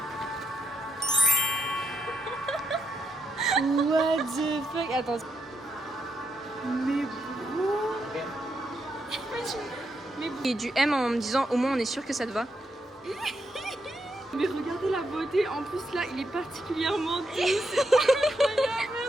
What the fuck? Attends. Et du M en me disant au moins on est sûr que ça te va. Mais regardez la beauté. En plus là, il est particulièrement doux. Il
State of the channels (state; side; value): normal; both; correlation 0.80